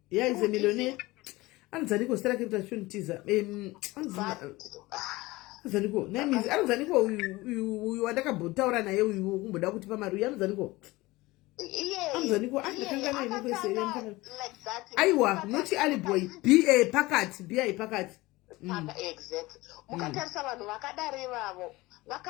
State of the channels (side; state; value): right; quieter; 20.4 dB